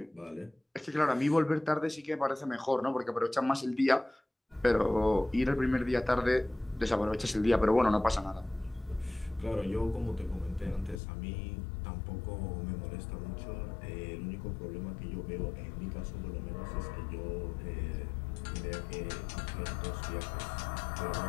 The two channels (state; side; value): drops out; right; at 11.0 s